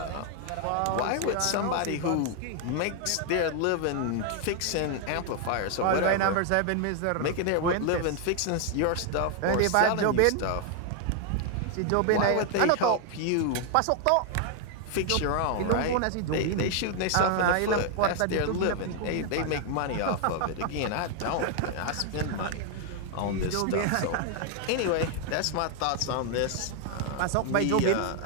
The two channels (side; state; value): both; different; correlation 0.00